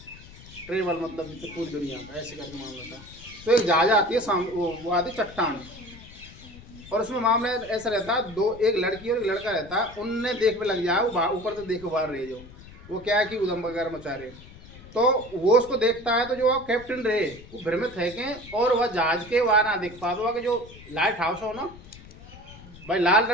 ट्रेवल, मतलब पूरी दुनिया का ऐसे करके मामला था। तो एक जहाज आती है सामने, वो आती चट्टान, और उसमें मामला ऐसा रहता है, एक लड़की और एक लड़का रहता है, उनने देख में लग जाए, वो ऊपर तो देख बाहर रहे, जो वो क्या है कि उदम वगैरह मचा रहे, तो वो उसको देखता है, तो जो कैप्टन रहे वो भ्रमित है कि, और वह जहाज के वहां ना देख पाता हुआ कि जो लाइट हाउस हो ना भाई, लाल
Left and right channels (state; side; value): noise; left; rumble, 19 dB below the sound